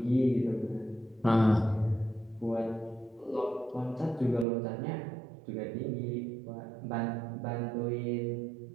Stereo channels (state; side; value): drops out; left; at 4.5 s